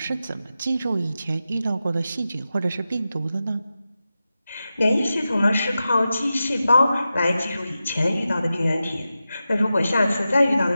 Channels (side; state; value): both; inverted; correlation -0.92